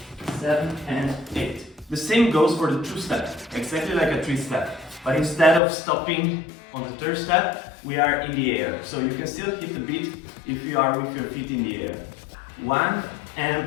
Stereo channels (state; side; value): drops out; right; at 5.6 s